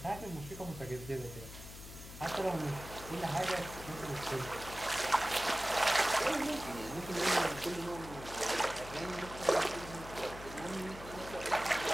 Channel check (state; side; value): noise; left; hum, 13 dB below the sound